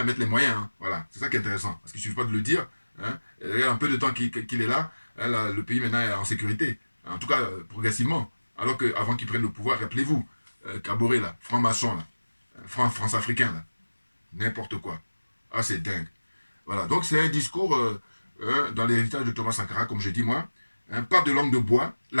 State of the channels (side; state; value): both; inverted; correlation -1.00